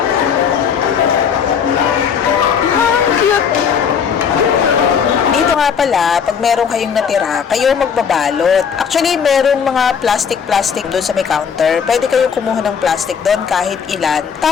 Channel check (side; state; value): right; quieter; 7.0 dB